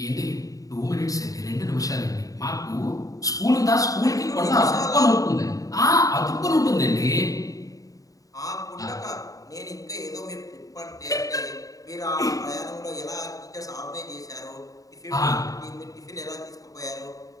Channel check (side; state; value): right; late; 0.17 ms